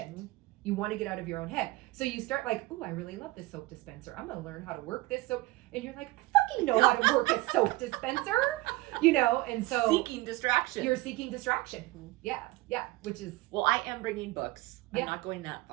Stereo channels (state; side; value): quieter; left; 20.2 dB